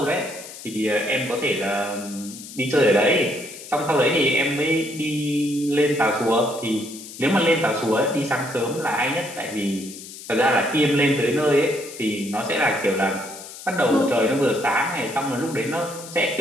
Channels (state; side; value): noise; left; hiss, 14 dB below the sound